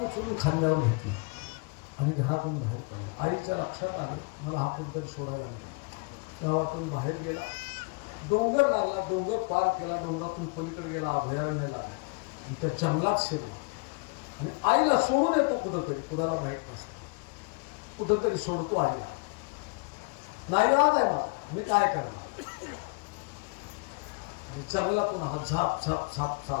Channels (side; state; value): right; quieter; 32.0 dB